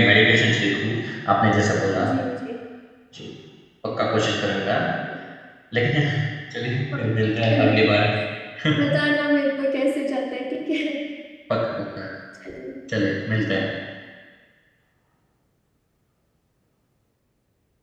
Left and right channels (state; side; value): identical; both; correlation 1.00